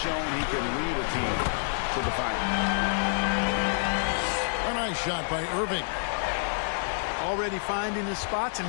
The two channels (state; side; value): silent; right; 59 dB below the other